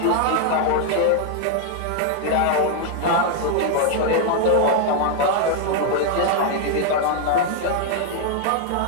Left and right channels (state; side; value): different; both; correlation 0.00